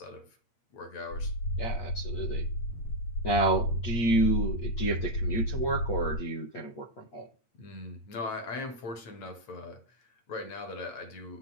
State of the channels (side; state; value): right; late; 8.5 ms